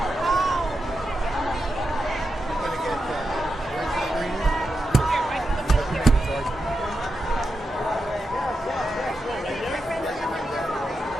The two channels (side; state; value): both; normal; correlation 0.88